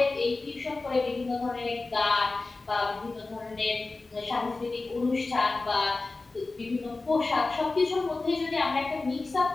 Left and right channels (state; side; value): quieter; right; 3.5 dB